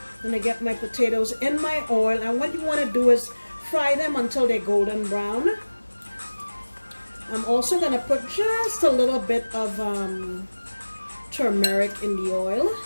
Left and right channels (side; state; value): both; inverted; correlation -1.00